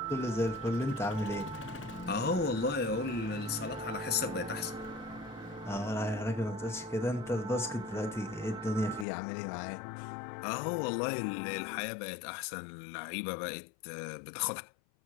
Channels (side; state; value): right; drops out; at 9.1 s